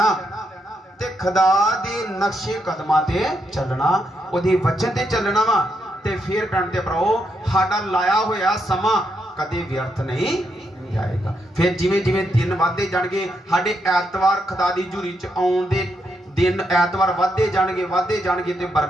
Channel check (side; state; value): both; normal; correlation 0.80